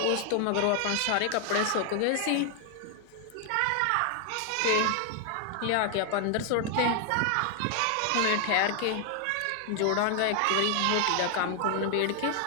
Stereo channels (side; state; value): both; different; correlation 0.00